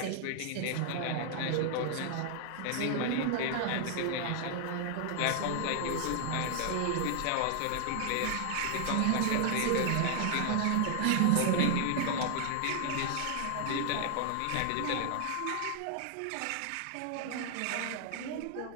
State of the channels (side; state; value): both; different; correlation 0.00